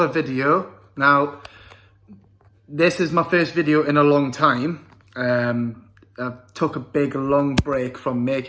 video. Now, this is my first video in a long time. I took a big long break from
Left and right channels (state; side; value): identical; both; correlation 1.00